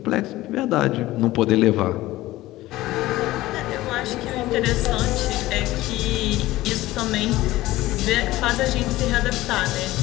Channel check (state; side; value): quieter; right; 17.1 dB